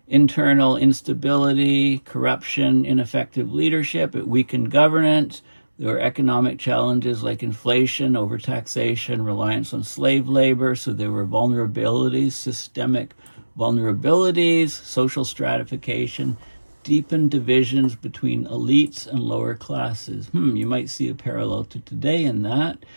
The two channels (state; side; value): inverted; both; correlation -1.00